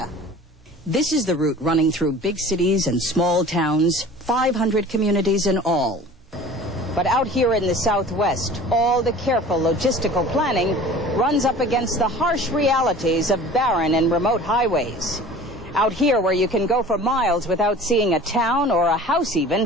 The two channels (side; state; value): both; normal; correlation 0.43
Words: This is the route running through big cities and small towns, 500 communities in all. But out here in the Southwest, all the careful logistical planning runs up against the harsh realities of barren and remote highways. Out here, where you can go for miles without seeing a town or a house